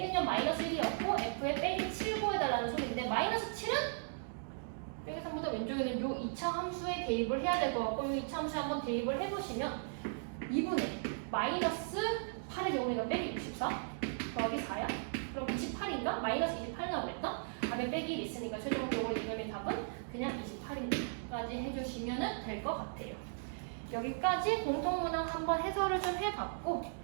마이너스 1이었고 F의 빼기 7 구해달라는 소리인데 마이너스 7은 빼기 3보다 왼쪽에는 요 2차 함수에 대입을 해야 될 것 같고 요 2차 함수에 한번 대입을 해보시면 2분의 마이너스 8의 경우에가 빼기 64 더하기 4야? 그럼 28인가? 마이너스 28 나오겠다? 답에 빼기 1 있으니까 최종적으로 이놈의 답은 그냥 28인까지 해주시면 될 것 같아요. 여기까지 공통문항 한번 해설을 좀 해봤고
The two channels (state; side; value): silent; left; digital silence